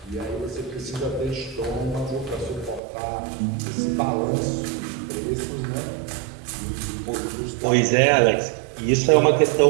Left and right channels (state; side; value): drops out; left; at 2.8 s